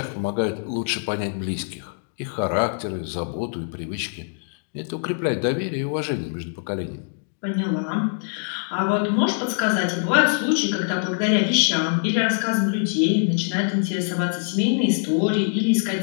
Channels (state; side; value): silent; right; digital silence